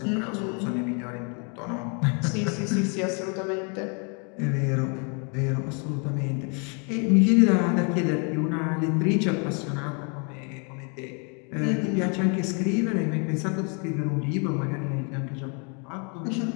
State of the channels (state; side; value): quieter; right; 36.4 dB